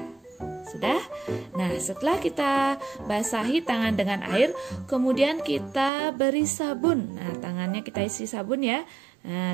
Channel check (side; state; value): left; drops out; at 5.9 s